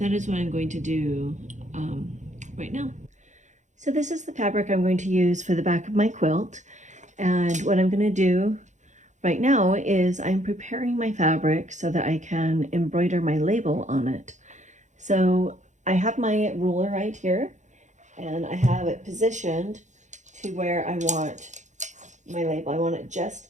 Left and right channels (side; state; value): left; late; 0.35 ms